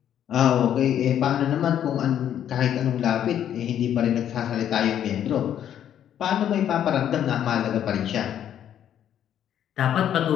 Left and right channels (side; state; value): right; quieter; 10.1 dB